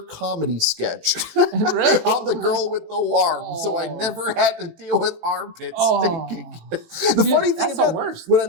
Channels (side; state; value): left; late; 18 ms